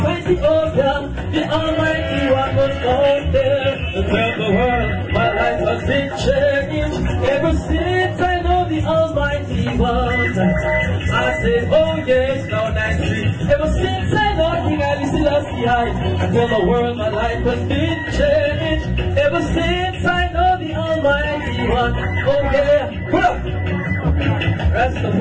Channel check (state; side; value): identical; both; correlation 1.00